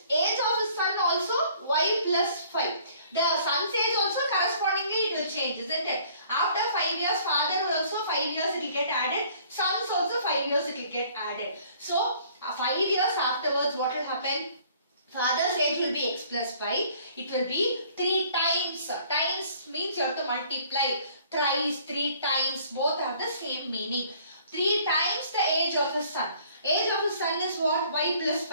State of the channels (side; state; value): both; inverted; correlation -0.56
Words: age of his son also y plus 5. The son's age also correspondingly it will change, isn't it? After 5 years, father also 5 years it will get added. Sons also 5 years it will get added. So, 5 years afterwards what will happen? Father's age will be x plus 5. It will be 3 times. Times means you have to multiply. Thrice, 3 times. Both have the same meaning. 3 times the age of his son. Age of his son is what? Y plus